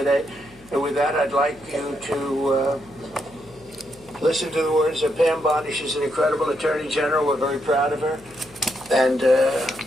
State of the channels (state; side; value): noise; left; hum, 25 dB below the sound